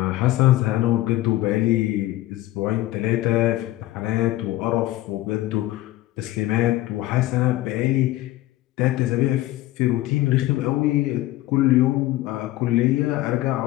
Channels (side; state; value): right; quieter; 16.1 dB